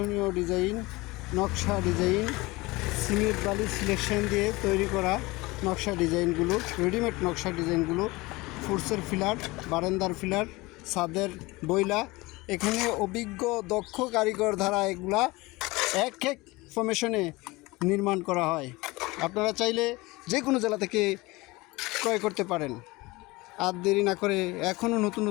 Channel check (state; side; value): quieter; right; 22.2 dB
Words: ডিজাইন, নকশা ডিজাইন, সিমেন্ট বালি সিলেকশন দিয়ে তৈরি করা নকশা ডিজাইনগুলো, রেডিমেড নকশা ডিজাইনগুলো, ফুটসের ফিলার, বারান্দার ফিলার, ছাদের বইলা, এখানে অভিজ্ঞ দক্ষ কারিগর দ্বারা এগুলা এক ফরমেশনে নির্মাণ করা হয়। আপনারা চাইলে যে কোনো জেলা থেকে ক্রয় করতে পারেন। আর দেরি না করে